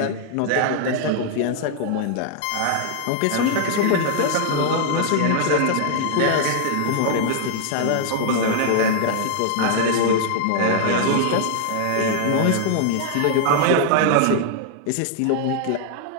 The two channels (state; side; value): different; both; correlation -0.01